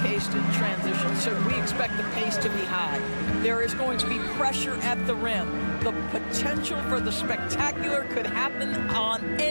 in transition, so we expect the pace to be high. There is going to be pressure at the rim. The potential for the spectacular could happen on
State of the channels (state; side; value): inverted; both; correlation -1.00